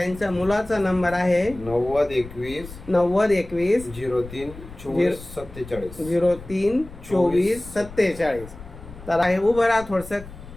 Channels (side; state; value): left; noise; rumble, 16 dB below the sound